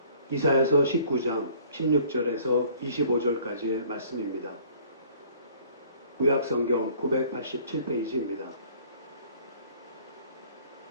이사야서 19장 16절에서 25절까지의 말씀입니다. 구약성경 987페이지입니다.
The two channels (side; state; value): both; inverted; correlation -0.55